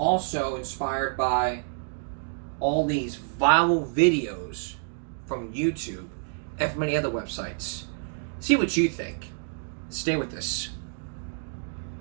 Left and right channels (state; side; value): silent; left; digital silence